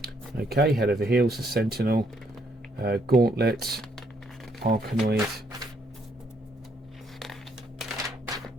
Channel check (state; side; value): normal; both; correlation 0.71